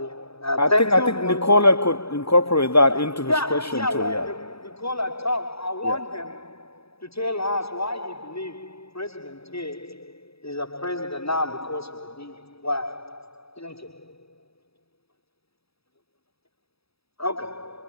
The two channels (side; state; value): right; late; 0.77 ms